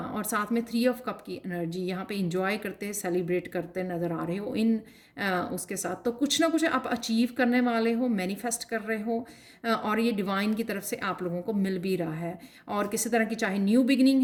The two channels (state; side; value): identical; both; correlation 1.00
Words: साथ में 3 ऑफ कप की एनर्जी यहाँ पे इंजॉय करते, सेलिब्रेट करते नज़र आ रहे हो इन उसके साथ। तो कुछ ना कुछ आप अचीव करने वाले हो, मैनिफेस्ट कर रहे हो, और ये डिवाइन की तरफ से आप लोगों को मिल भी रहा है। और किसी तरह की, चाहे न्यू बिगनिंग